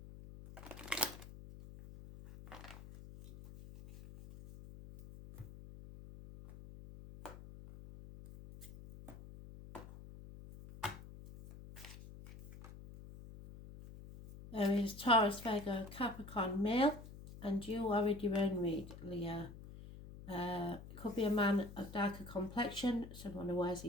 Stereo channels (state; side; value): noise; left; hum, 15 dB below the sound